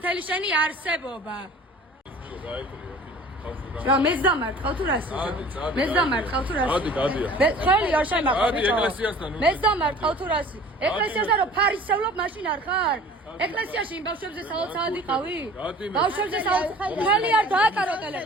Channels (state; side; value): normal; both; correlation 0.46